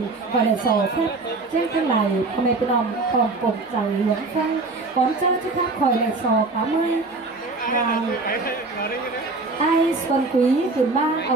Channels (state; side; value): quieter; left; 3.5 dB